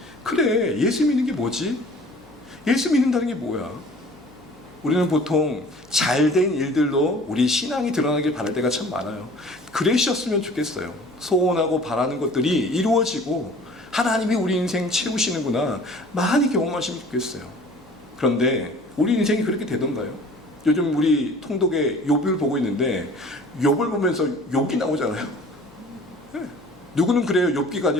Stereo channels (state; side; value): noise; left; hum, 29 dB below the sound